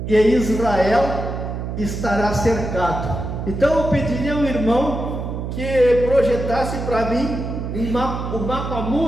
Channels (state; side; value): noise; right; hum, 5 dB below the sound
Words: E Israel estará cercado. Então eu pediria ao irmão que projetasse para mim o mapa